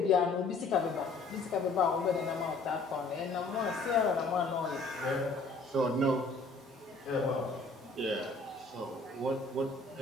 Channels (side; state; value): right; quieter; 3.5 dB